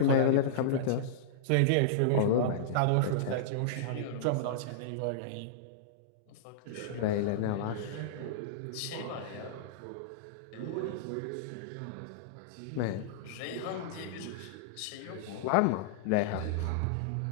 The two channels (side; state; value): both; different; correlation -0.03